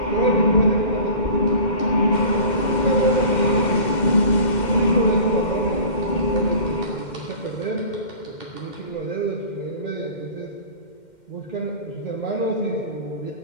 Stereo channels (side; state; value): right; late; 2.1 ms